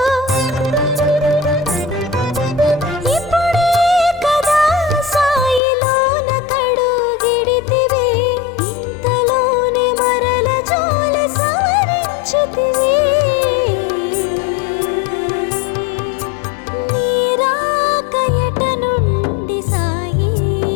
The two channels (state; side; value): drops out; right; at 5.6 s